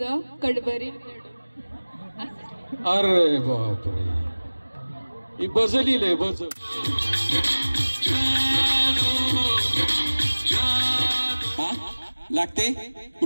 कडवरी अरे बापरे ही बजली लय बज लागते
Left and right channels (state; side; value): inverted; both; correlation -1.00